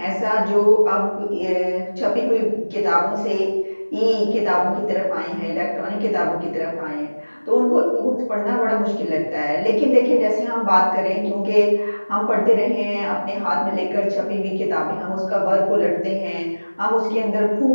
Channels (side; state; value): both; inverted; correlation -1.00